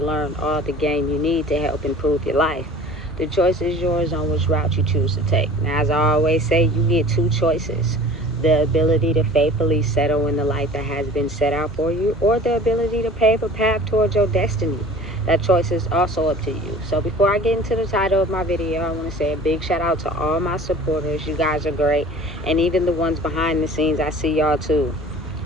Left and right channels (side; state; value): both; normal; correlation 0.44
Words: learn all the game you need to help improve your life. The choice is yours on which route you choose to take. Now, as I always say, you get two choices. The ability to faithfully settle in the life that has been set out for you, or the ability to pave a path towards your destiny. That choice is also up to you. So before I get into the title of my video, I want to say a big shout out to all my supporters. You guys are great. And even the ones behind the scenes, I see y'all too.